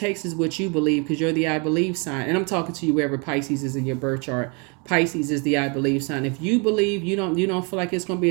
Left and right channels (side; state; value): left; quieter; 33.3 dB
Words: is what you believe, because you're the I believe sign. And I'm talking to you wherever Pisces is in your birth chart. Pisces is the I believe sign. If you believe you don't feel like it's going to be